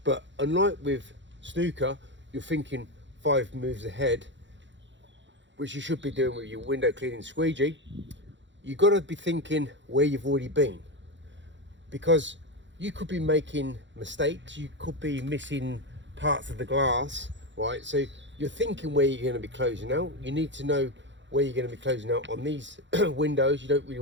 But unlike with snooker, you're thinking 5 moves ahead, which you should be doing with your window cleaning squeegee. You've got to be thinking where you've already been, because you could be making mistakes, you could be missing parts of the glass, right? So you're thinking where you're going to be closing out. You need to know where you're going to be closing out on these windows. You don't really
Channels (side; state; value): left; late; 0.54 ms